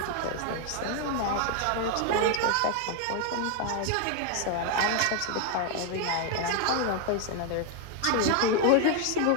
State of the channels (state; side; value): different; both; correlation 0.01